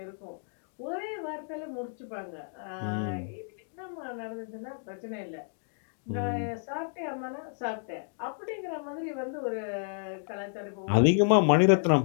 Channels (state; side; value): silent; right; digital silence